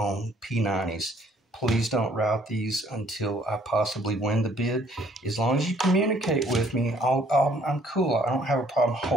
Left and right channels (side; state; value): both; normal; correlation 0.62